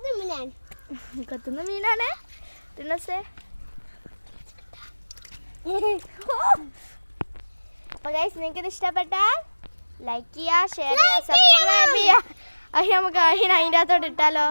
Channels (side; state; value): both; inverted; correlation -1.00